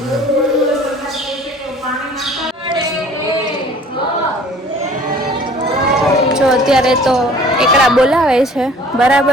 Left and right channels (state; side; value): normal; both; correlation 0.50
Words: જો અત્યારે તો એકડા બોલાવે છે,